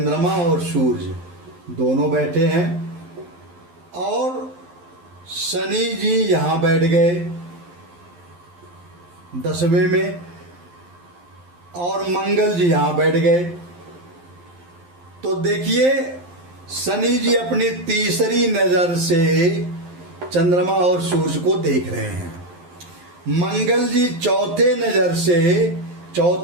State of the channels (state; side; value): late; left; 11 ms